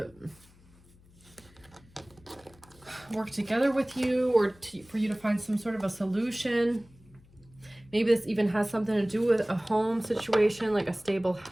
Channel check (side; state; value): left; noise; hum, 27 dB below the sound